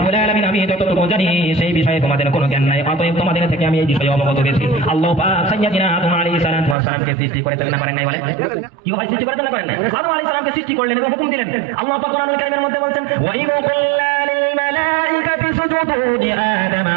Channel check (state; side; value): drops out; left; at 6.8 s